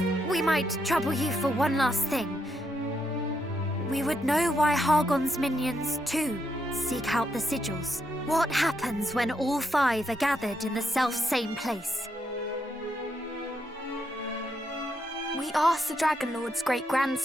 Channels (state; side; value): normal; both; correlation 0.80